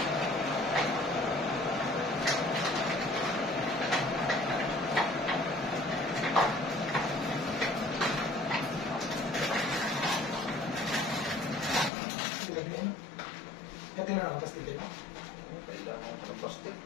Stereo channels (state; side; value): drops out; right; at 11.9 s